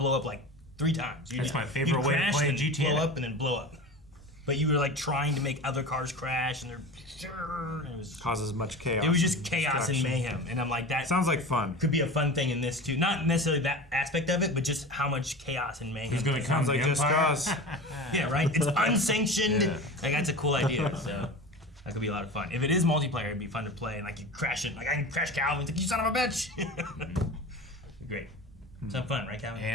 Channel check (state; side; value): normal; both; correlation 0.32